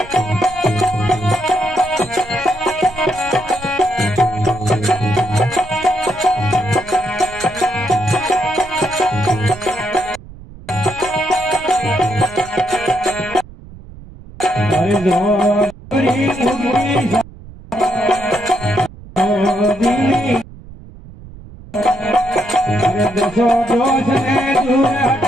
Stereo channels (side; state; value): right; noise; rumble, 18 dB below the sound